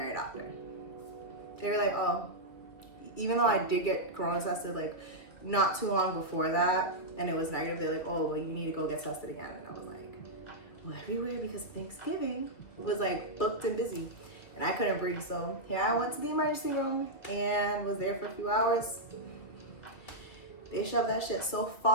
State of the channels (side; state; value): right; late; 2.6 ms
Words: doctor. They were like, oh, even though I did get corona tested not too long before that and it was negative, they're like, oh, well, you need to go get tested again. And I was like, well, everywhere because Thanksgiving was booked and busy and I couldn't breathe. So here I went to the emergency room and was there for a few hours. They shoved that shit so